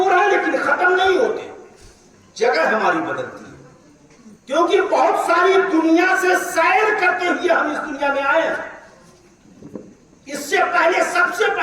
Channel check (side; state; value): both; identical; correlation 1.00